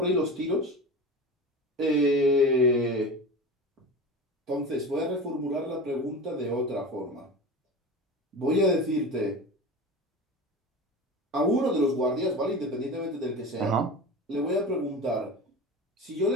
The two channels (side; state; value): both; normal; correlation 0.30